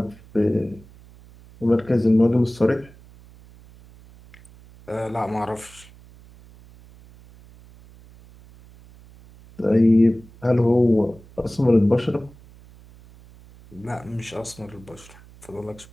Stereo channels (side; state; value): right; noise; hum, 23 dB below the sound